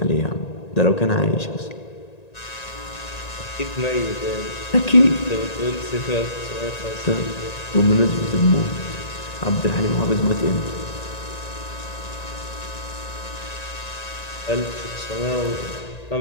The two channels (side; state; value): right; late; 1.9 ms